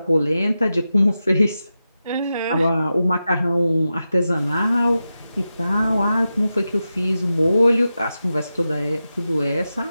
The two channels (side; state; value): both; inverted; correlation -0.92